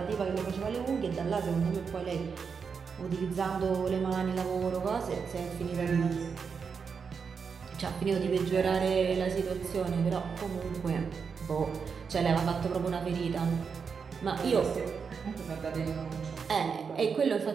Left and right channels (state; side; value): quieter; left; 5.9 dB